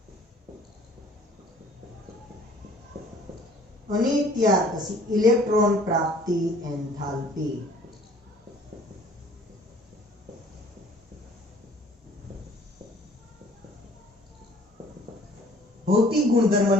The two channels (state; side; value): normal; both; correlation 0.54